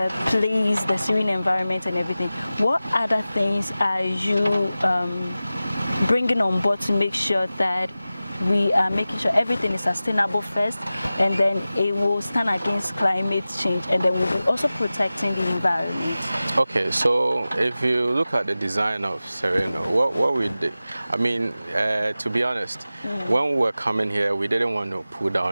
place, the serene environment and everything. What other things are you bringing on board to make sure that we are making sure everything is sustainable first, and then it will stand against climate change, and then we'll be also protecting the environment? Okay, so if you look at the design of Sereno, what we did, I mean, to be honest, when we were coming here, we didn't want to pull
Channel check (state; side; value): inverted; both; correlation -0.96